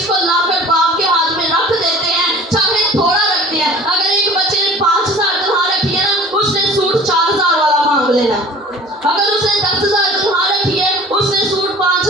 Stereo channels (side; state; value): both; normal; correlation 0.45